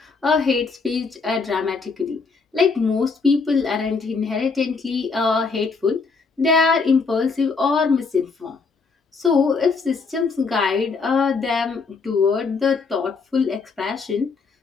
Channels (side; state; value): right; quieter; 4.6 dB